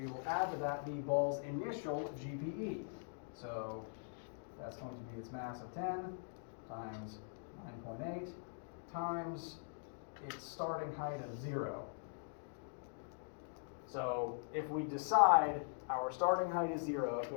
will add to that the ball's initial GPE. So that's going to be its mass of 10 times 9.8 times its starting height of 0. So if we decide our starting height is 0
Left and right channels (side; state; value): right; silent; digital silence